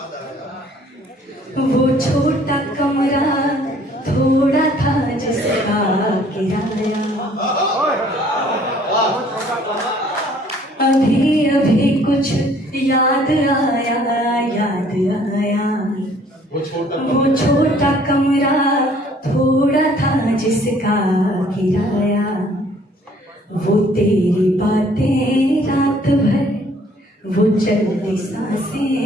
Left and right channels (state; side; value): normal; both; correlation 0.58